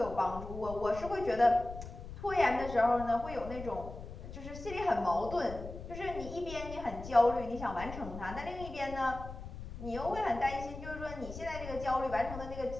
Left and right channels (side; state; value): left; noise; rumble, 11 dB below the sound